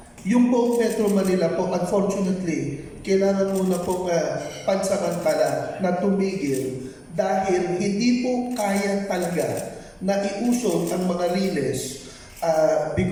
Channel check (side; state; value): both; identical; correlation 1.00